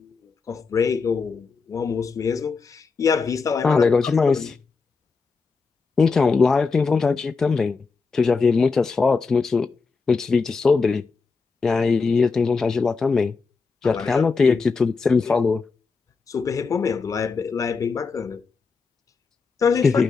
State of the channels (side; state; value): right; quieter; 4.7 dB